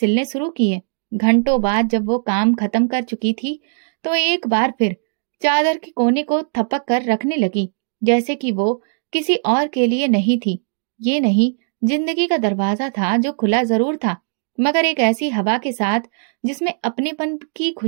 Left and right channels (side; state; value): left; silent; digital silence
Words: शुरू किए। घंटों बाद जब वो काम खत्म कर चुकी थी, तो एक बार फिर चादर के कोने को थपक कर रखने लगी, जैसे कि वो किसी और के लिए नहीं थी। ये नहीं, जिंदगी का दरवाजा था जो खुला जरूर था, मगर एक ऐसी हवा के साथ जिसमें अपनेपन की